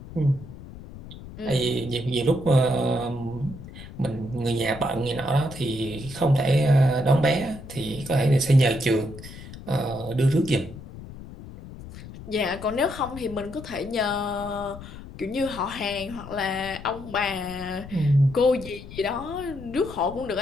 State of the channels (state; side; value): noise; left; rumble, 14 dB below the sound